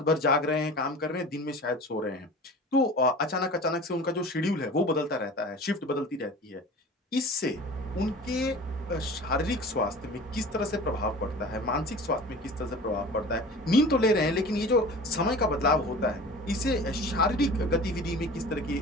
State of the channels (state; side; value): normal; both; correlation 0.39